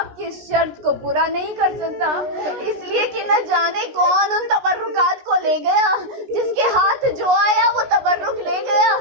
کی اس شرط کو پورا نہیں کر سکتا، اس لیے کہ نہ جانے کون ان تبرکات کو لے گیا، جس کے ہاتھ جو آیا وہ تبرک لے گیا۔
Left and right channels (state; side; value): late; left; 16 ms